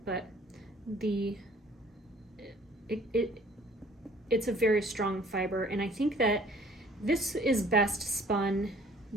But it's a very strong fiber, and I think that this is best spun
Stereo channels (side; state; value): both; normal; correlation 0.55